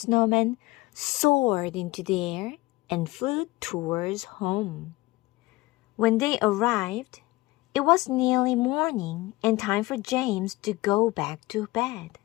soared into the air and flew towards home. When they arrived, it was nearly morning and time for James to go back to bed.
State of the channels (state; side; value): quieter; right; 20.3 dB